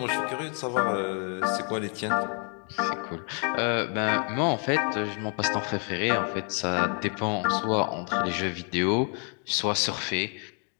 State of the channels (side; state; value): right; quieter; 39.8 dB